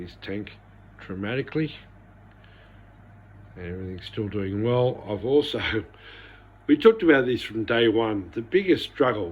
tank dramatically, and everything's still doing well. I've also, we talked about this from day one, the biggest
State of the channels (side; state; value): both; identical; correlation 1.00